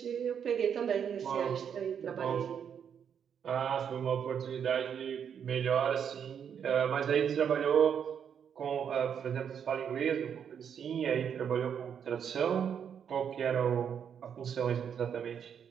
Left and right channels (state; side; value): quieter; left; 7.9 dB